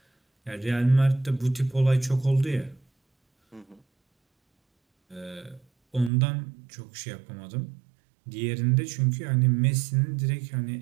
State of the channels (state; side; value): drops out; left; at 6.1 s